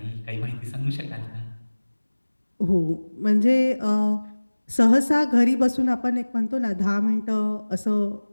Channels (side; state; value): both; inverted; correlation -1.00